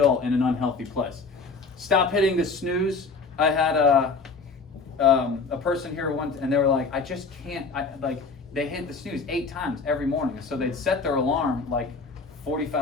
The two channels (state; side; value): quieter; right; 4.4 dB